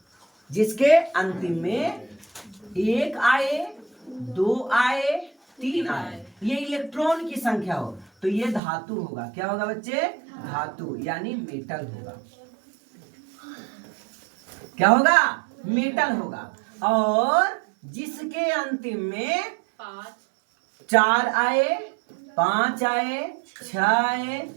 1 आए, 2 आए, 3 आए, ये इलेक्ट्रॉन की संख्या हो तो ये धातु होगा। क्या होगा बच्चे? धातु, यानी मेटल होगा। क्या होगा? मेटल होगा। और जिसके अंतिम में 4 आए, 5 आए, 6 आए,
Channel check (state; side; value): drops out; left; at 8.6 s